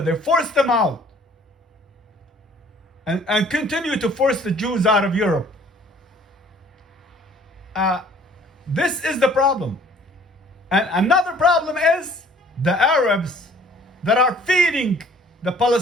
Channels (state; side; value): normal; both; correlation 0.55